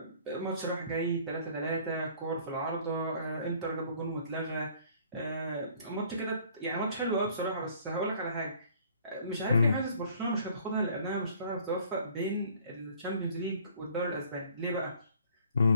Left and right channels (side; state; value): both; inverted; correlation -0.56